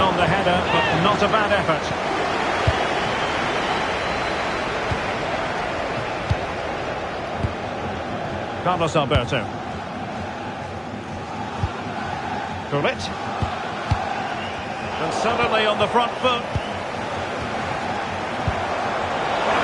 on the header, but not a bad effort. Carlos Alberto. Gullit. And suddenly on the front foot.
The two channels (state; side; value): identical; both; correlation 1.00